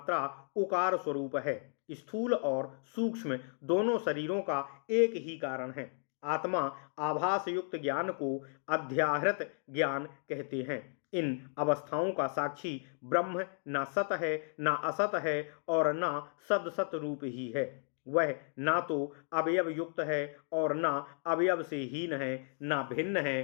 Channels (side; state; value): right; silent; 55 dB below the other